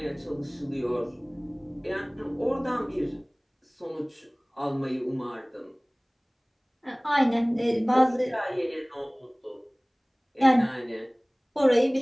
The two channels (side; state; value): both; identical; correlation 1.00